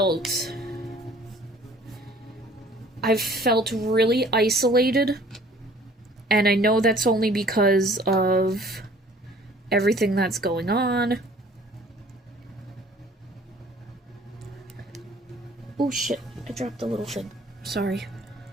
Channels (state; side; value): normal; both; correlation 0.53